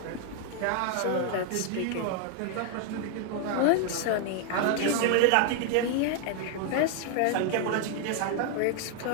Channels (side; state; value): both; different; correlation 0.00